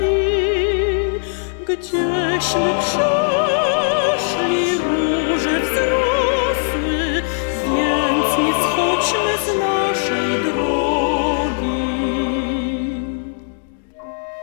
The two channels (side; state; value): right; silent; digital silence